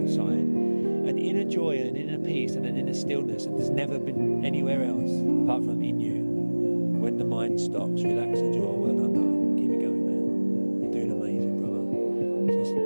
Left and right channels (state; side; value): inverted; both; correlation -1.00